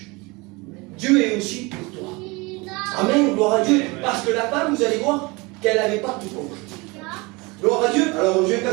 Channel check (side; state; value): left; quieter; 25.6 dB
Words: Dieu est aussi pour toi. Amen, gloire à Dieu. Parce que la femme, vous allez voir qu'elle n'avait pas tout compris. Gloire à Dieu. Alors je vais